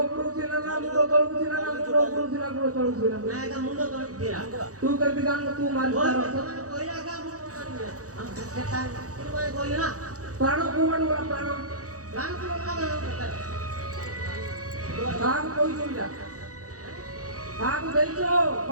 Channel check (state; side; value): late; left; 0.66 ms